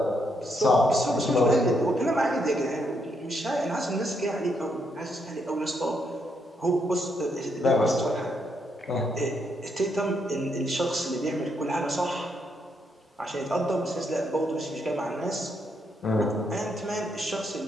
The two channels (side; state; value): both; normal; correlation 0.77